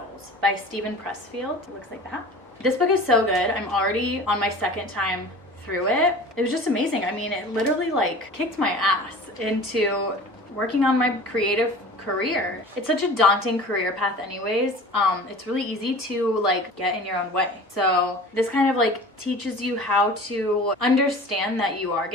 by Steven Pressfield. It looks like that. This book is so good. I'm already on my second time through it. It was just amazing. I mean, it literally like kicked my ass into working on my creative career. It's such a daunting career path anyways. It's really easy to like get in your own way. So this kind of like teaches you how to understand that you are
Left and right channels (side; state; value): both; normal; correlation 0.40